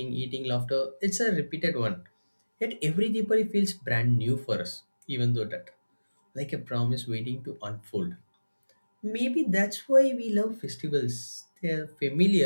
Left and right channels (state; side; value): inverted; both; correlation -1.00